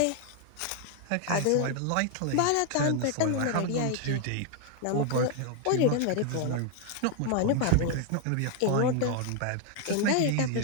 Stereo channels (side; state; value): both; different; correlation 0.00